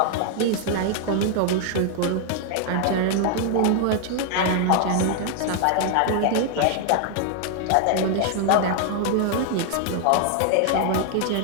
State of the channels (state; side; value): different; both; correlation 0.00